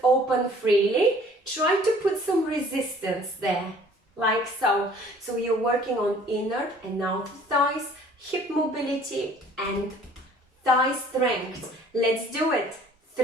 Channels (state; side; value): normal; both; correlation 0.53